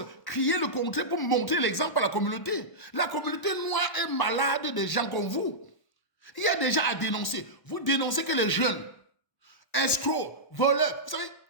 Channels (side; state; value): right; late; 1.1 ms